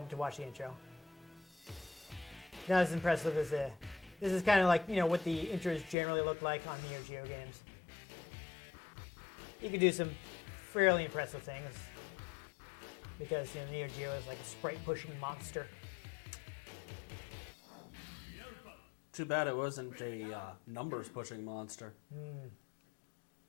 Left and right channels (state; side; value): drops out; right; at 6.0 s